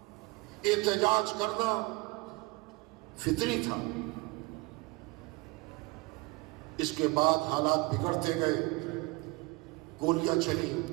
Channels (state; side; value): quieter; left; 24.5 dB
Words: احتجاج کرنا فطری تھا. اس کے بعد حالات بگڑتے گئے، گولیاں چلی،